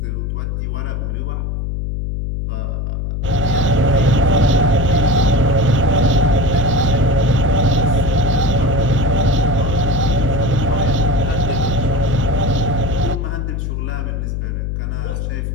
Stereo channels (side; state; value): left; noise; hum, 2 dB below the sound